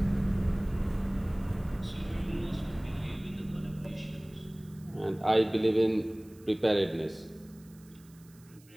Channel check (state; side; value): noise; right; hiss, 27 dB below the sound